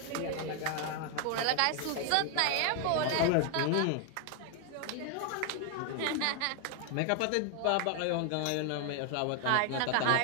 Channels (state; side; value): different; both; correlation 0.00